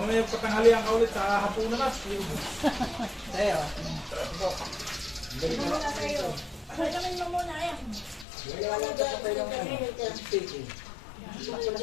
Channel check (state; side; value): drops out; right; at 8.2 s